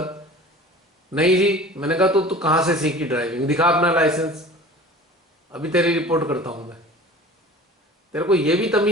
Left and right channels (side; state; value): both; normal; correlation 0.42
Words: नहीं जी। मैंने कहा तो तू कहां से सीखी ड्राइविंग? दिखा अपना लाइसेंस, अभी तेरी रिपोर्ट करता हूं मैं। तेरे को ये भी